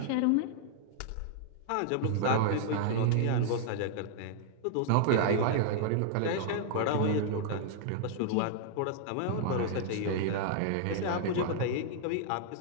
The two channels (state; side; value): different; both; correlation -0.01